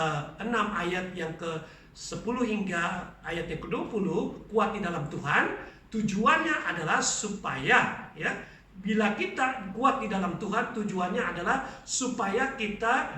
ayat yang ke-10 hingga ayat yang ke-20, kuat di dalam Tuhan. Tujuannya adalah supaya bila kita kuat di dalam Tuhan, tujuannya adalah supaya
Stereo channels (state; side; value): identical; both; correlation 1.00